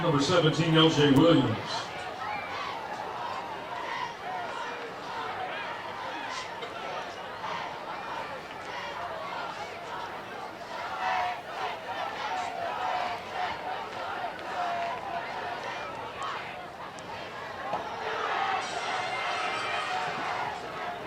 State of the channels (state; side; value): identical; both; correlation 1.00